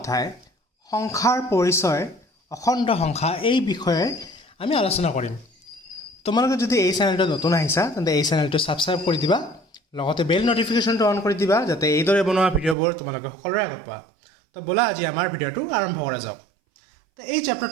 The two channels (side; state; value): left; drops out; at 12.8 s